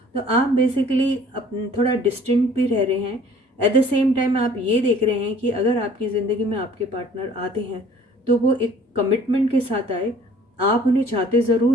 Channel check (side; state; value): both; normal; correlation 0.53